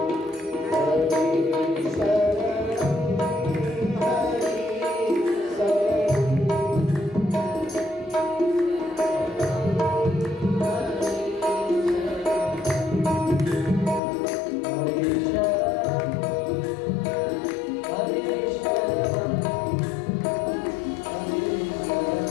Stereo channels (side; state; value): right; drops out; at 14.0 s